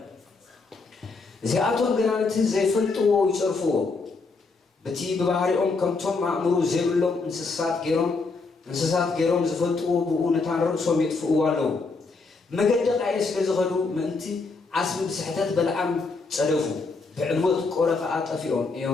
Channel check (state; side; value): quieter; right; 4.0 dB